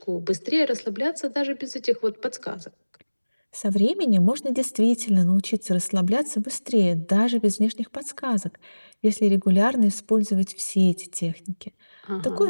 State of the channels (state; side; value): inverted; both; correlation -1.00